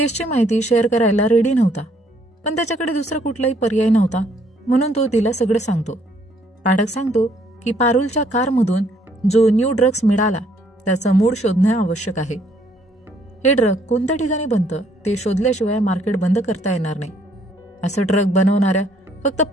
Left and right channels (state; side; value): normal; both; correlation 0.66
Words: माहिती शेअर करायला रेडी नव्हता, पण त्याच्याकडे दुसरा कुठलाही पर्याय नव्हता, म्हणून तो तिला सगळं सांगतो. पाठक सांगतो की पारुलच्या कारमधून जो न्यू ड्रग्स मिळाला त्याचं मूळ शोधणे आवश्यक आहे. हे ड्रग कोणत्या ठिकाणी बनतं ते शोधल्याशिवाय मार्केट बंद करता येणार नाही. असं ड्रग बनवणाऱ्या फक्त